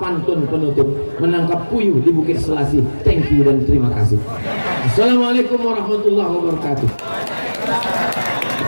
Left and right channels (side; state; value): both; inverted; correlation -1.00